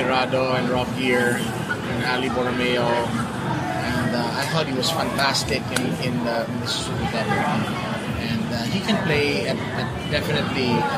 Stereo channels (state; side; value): identical; both; correlation 1.00